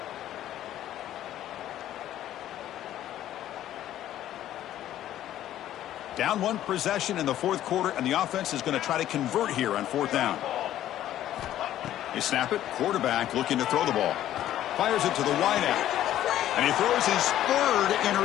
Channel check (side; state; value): right; quieter; 12.5 dB